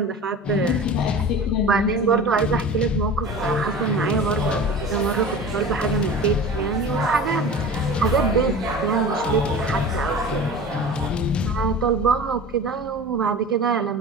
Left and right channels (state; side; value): normal; both; correlation 0.36